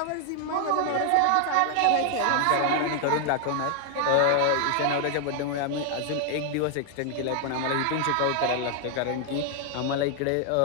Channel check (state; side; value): different; both; correlation 0.00